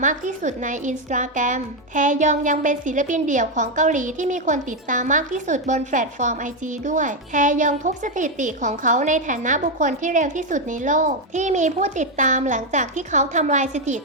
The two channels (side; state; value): both; normal; correlation 0.05